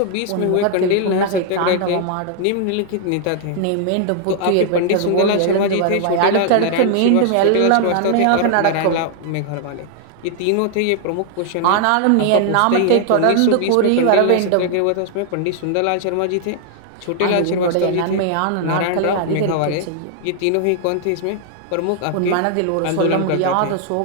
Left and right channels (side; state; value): both; different; correlation 0.00